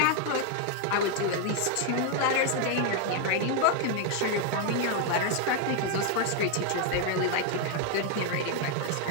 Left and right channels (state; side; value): different; both; correlation 0.00